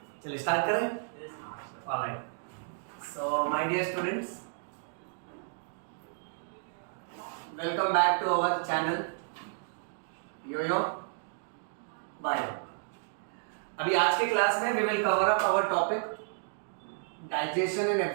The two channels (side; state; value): left; silent; digital silence